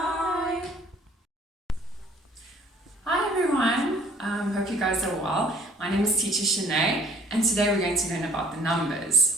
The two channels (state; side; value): normal; both; correlation 0.54